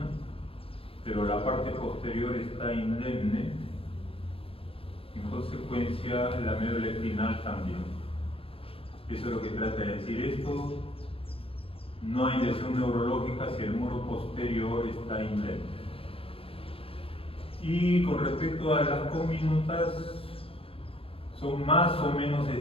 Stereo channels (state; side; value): late; right; 0.27 ms